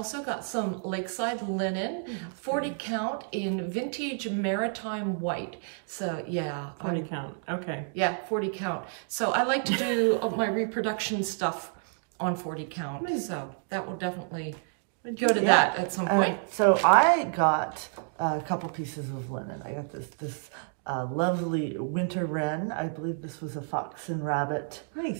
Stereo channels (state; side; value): silent; left; 58 dB below the other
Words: got some Lakeside linen, 40 count in vintage maritime white. So yeah. 40 count, okay. Yeah, 40 count. So I like to do my reproduction stuff on 40 count. So that will definitely go to that at some point. So I got a couple pieces of linen. I got this lovely winter wren. I believe this was a fox and rabbit.